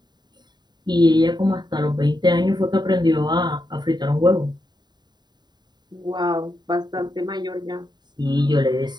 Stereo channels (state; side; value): late; left; 0.21 ms